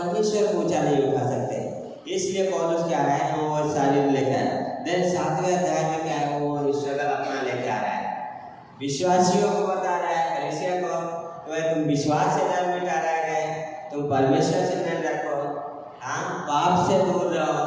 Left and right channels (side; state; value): both; identical; correlation 1.00